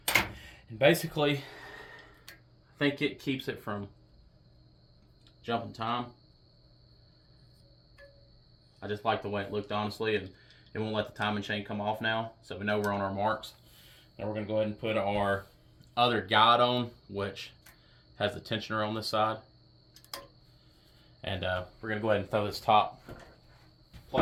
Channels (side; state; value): both; identical; correlation 1.00